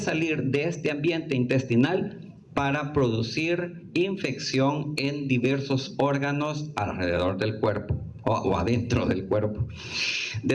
de este ambiente intestinal para producir infección en diversos órganos alrededor del cuerpo o adentro del cuerpo.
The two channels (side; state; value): both; identical; correlation 1.00